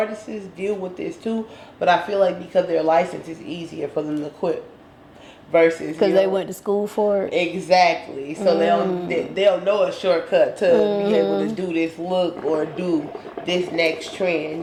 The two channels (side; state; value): both; identical; correlation 1.00